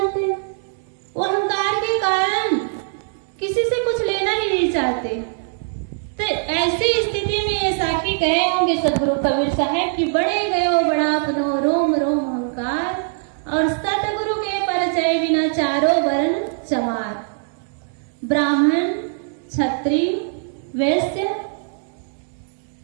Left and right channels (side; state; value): left; silent; 65 dB below the other